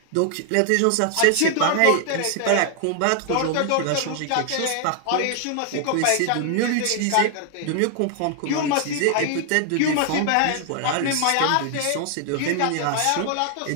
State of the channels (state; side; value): different; both; correlation 0.00